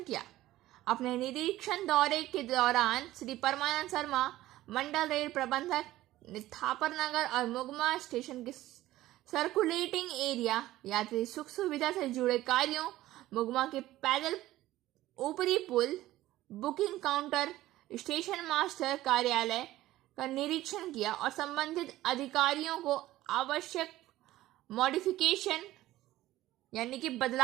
किया। अपने निरीक्षण दौरे के दौरान श्री परमानंद शर्मा, मंडल रेल प्रबंधक, थापर नगर और मुगमा स्टेशन के सर्कुलेटिंग एरिया, यात्री सुख सुविधा से जुड़े कार्यों, मुगमा के पैदल ऊपरी पुल, बुकिंग काउंटर, स्टेशन मास्टर कार्यालय का निरीक्षण किया और संबंधित अधिकारियों को आवश्यक मॉडिफिकेशन यानी कि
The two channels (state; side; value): quieter; left; 15.6 dB